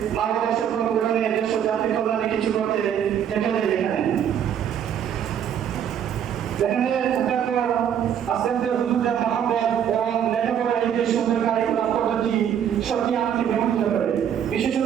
মা বাবার স্বপ্ন পূরণে দেশ ও জাতির কল্যাণে কিছু করতে দেখা যায়। এখানে আস্তে হুজুরের মহব্বত এবং লেখাপড়ার এই সুন্দর কারিকুলাম পদ্ধতি সত্যি আমাকে বিমোহিত করে।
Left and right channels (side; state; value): left; quieter; 9.1 dB